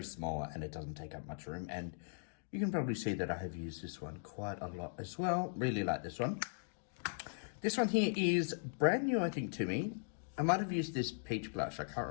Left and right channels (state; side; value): silent; right; digital silence